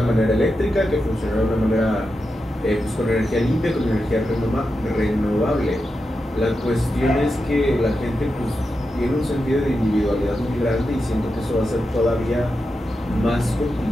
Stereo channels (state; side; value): normal; both; correlation 0.89